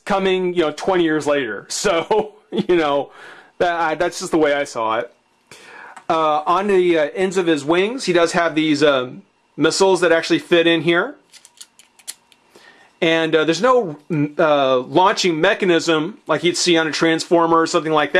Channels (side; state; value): both; identical; correlation 1.00